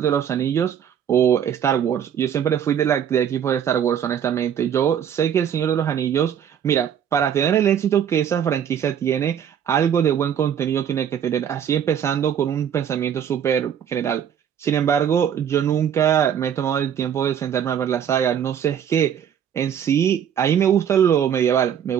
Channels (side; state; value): left; quieter; 8.9 dB